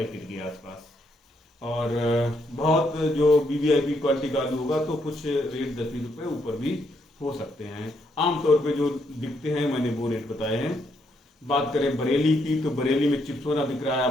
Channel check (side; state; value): both; normal; correlation 0.75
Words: के आसपास। और बहुत जो वीवीआईपी क्वालिटी का आलू होगा तो कुछ रेट 10-20 रुपए ऊपर भी हो सकते हैं। आमतौर पे जो बिकते हैं मैंने वो रेट बताए हैं। बात करें बरेली की, तो बरेली में चिपसोना बिक रहा है